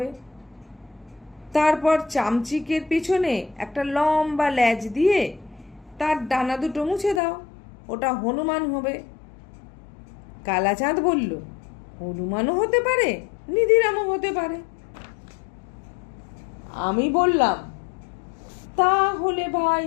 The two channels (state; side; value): drops out; right; at 7.2 s